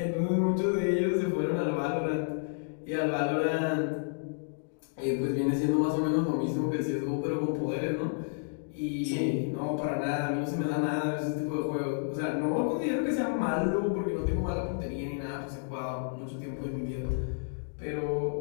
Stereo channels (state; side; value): silent; right; digital silence